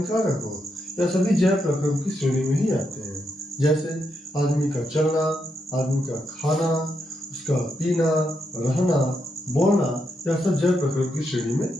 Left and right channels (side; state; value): both; normal; correlation 0.82